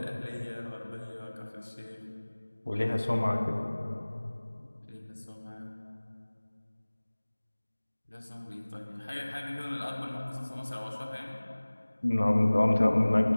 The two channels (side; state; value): both; inverted; correlation -1.00